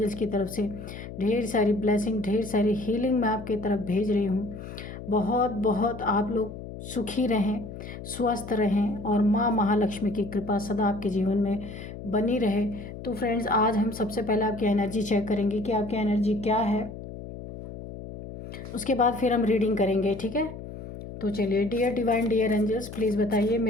की तरफ से ढेर सारी ब्लेसिंग, ढेर सारी हीलिंग मैं आपके तरफ भेज रही हूँ। बहुत बहुत आप लोग सुखी रहें, स्वस्थ रहें और माँ महालक्ष्मी की कृपा सदा आपके जीवन में बनी रहे। तो फ्रेंड्स, आज हम सबसे पहले आपकी एनर्जी चेक करेंगे कि आपकी एनर्जी क्या है। उसके बाद फिर हम रीडिंग करेंगे, ठीक है। तो चलिए, dear divine, dear angels, please बताइए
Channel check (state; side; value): noise; left; hum, 11 dB below the sound